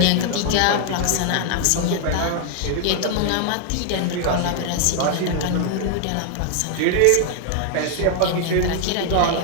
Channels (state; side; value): different; both; correlation 0.00